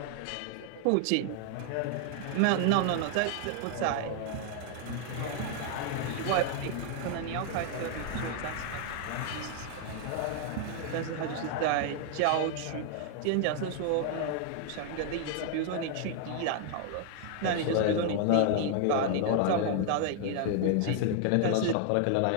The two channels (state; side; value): different; both; correlation 0.00